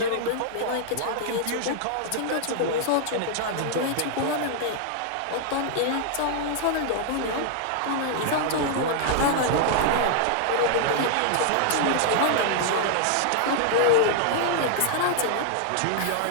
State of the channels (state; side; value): different; both; correlation 0.00